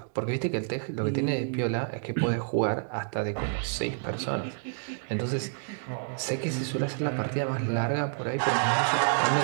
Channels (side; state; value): left; silent; digital silence